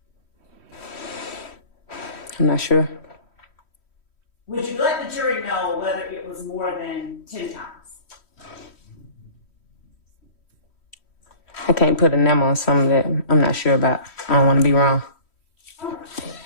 I'm not sure. Would you let the jury know whether it was more than 10 times? I can't put a number on something that I'm not sure about. I don't want to be wrong.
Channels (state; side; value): late; right; 3.1 ms